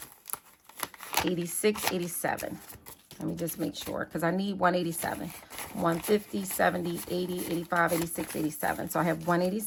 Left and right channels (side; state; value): both; identical; correlation 1.00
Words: 86, 87. Let me just make sure, because I need 187. 150, 70, 80, 85, 86, 87. So I have